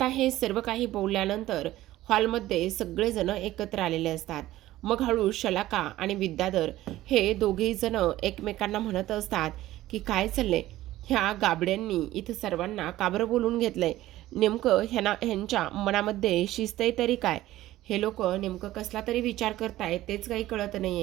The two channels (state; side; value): quieter; left; 15.5 dB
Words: हे सर्व काही बोलल्यानंतर हॉलमध्ये सगळेजण एकत्र आलेले असतात. मग हळू शलाका आणि विद्याधर हे दोघेही जण एकमेकांना म्हणत असतात की काय चाललंय, ह्या गाबड्यांनी इथं सर्वांना का बरं बोलून घेतलंय, नेमकं ह्यांच्या मनामध्ये शिस्त आहे तरी काय, हे लोक नेमकं कसला तरी विचार करतायत तेच काही कळत नाही